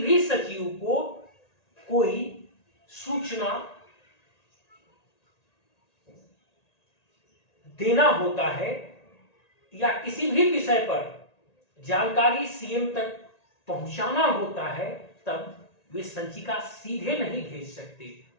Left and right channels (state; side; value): late; right; 1.9 ms